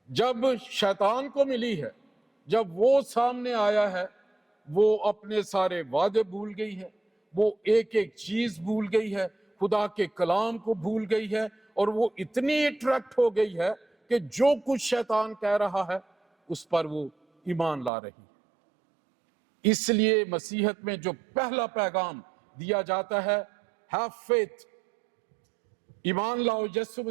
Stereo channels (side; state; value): left; drops out; at 17.9 s